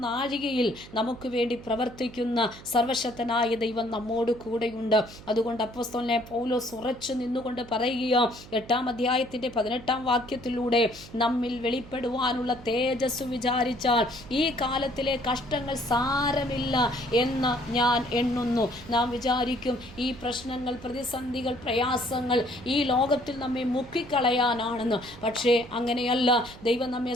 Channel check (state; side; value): noise; right; hum, 18 dB below the sound